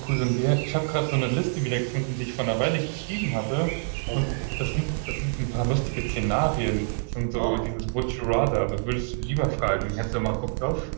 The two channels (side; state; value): left; silent; 61 dB below the other